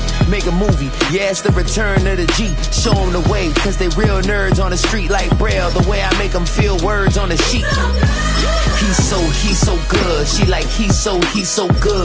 Make a movie, yeah, it's the return of the G. Show them the way, cause they real nerds on the street like Braille. The way I make them feel words on the sheet. He's so good. She like, he's so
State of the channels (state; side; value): identical; both; correlation 1.00